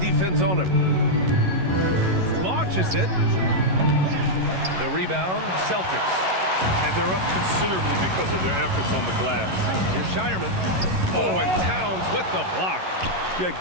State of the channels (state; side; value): late; left; 11 ms